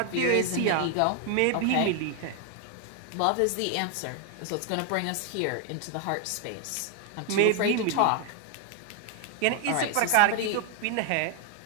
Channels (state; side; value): different; both; correlation 0.00